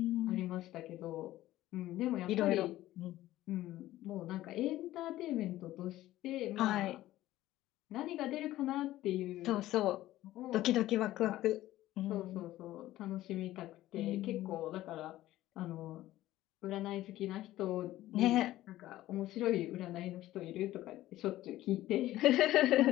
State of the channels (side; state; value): right; quieter; 15.2 dB